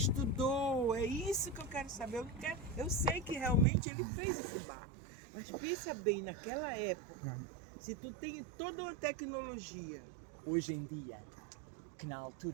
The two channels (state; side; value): drops out; left; at 3.7 s